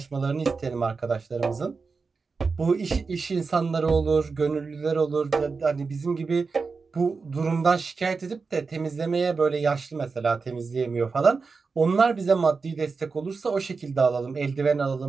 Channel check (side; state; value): left; quieter; 4.6 dB